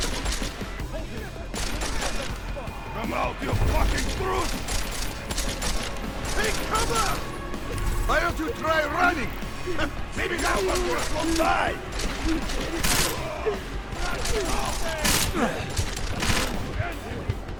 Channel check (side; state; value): both; identical; correlation 1.00